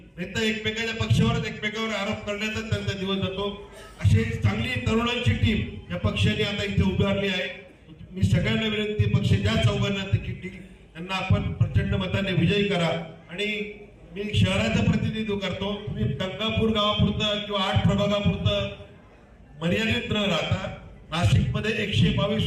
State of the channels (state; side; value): identical; both; correlation 1.00